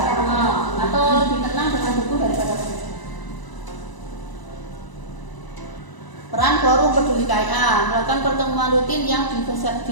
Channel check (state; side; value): late; right; 1.0 ms